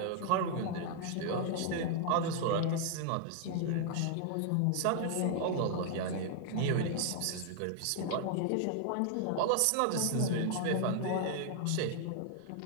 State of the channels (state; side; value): different; both; correlation 0.00